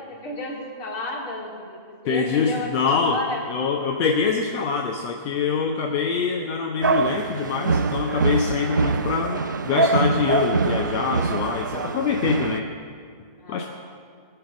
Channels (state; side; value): inverted; both; correlation -0.34